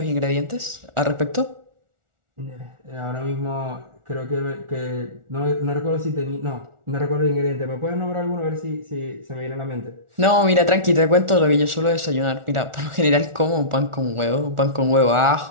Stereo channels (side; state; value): left; late; 1.4 ms